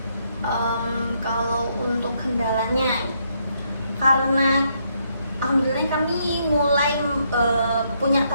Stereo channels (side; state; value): both; inverted; correlation -0.75